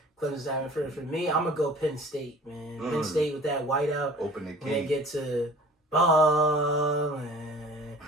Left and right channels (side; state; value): both; normal; correlation 0.46